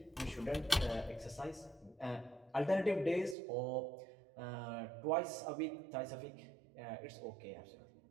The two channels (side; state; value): left; drops out; at 3.4 s